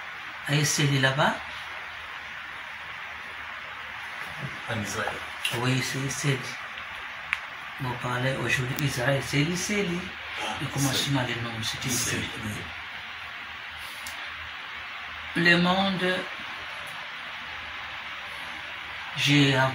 à Esseli là-bas, en Israël. Oui, c'est Esseli. On parlait aujourd'hui Israël, c'est Esseli. Le commencement des noms, c'était Esseli. Le monde, j'ai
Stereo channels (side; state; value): both; identical; correlation 1.00